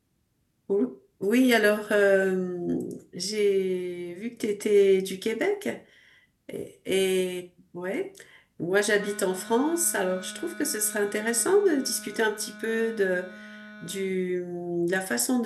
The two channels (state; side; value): identical; both; correlation 1.00